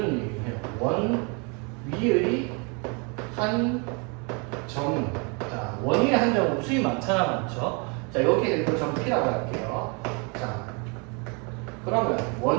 얘기를 해요. 원 위의 한 점. 자, 원 위의 한 점은 수이 많잖아, 많죠? 자, 여기에 이거 점 P라고 할게요. 자, 그러면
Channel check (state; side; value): quieter; left; 33.2 dB